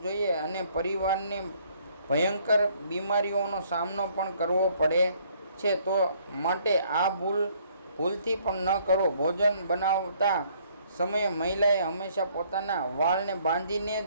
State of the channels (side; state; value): both; inverted; correlation -0.64